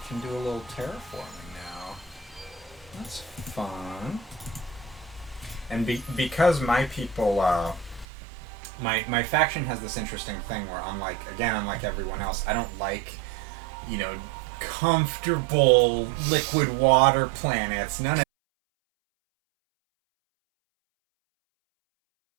can do a little terraforming now. That's fun. And because my people my faction has this interesting thing where unlike everyone else, I don't like, comfortable liquid water planets. None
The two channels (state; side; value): drops out; left; at 8.1 s